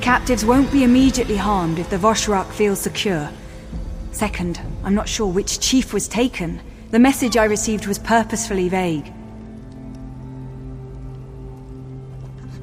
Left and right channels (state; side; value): identical; both; correlation 1.00